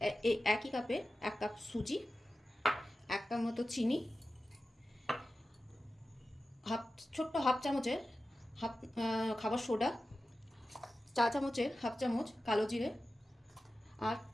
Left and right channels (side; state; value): both; normal; correlation 0.94